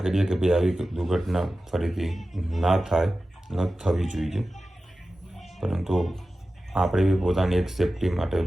કરીએ કે ભાઈ આવી દુર્ઘટના ફરીથી ના થાય, ન થવી જોઈએ. પરંતુ આપણે બી પોતાની એક સેફટી માટે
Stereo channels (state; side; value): normal; both; correlation 0.94